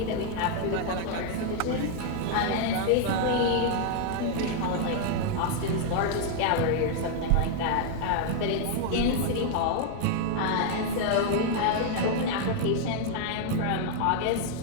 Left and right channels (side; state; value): both; different; correlation 0.00